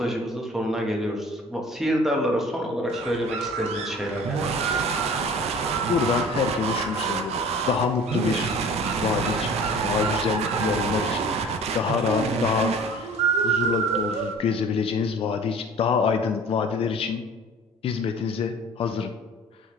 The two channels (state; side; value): normal; both; correlation 0.45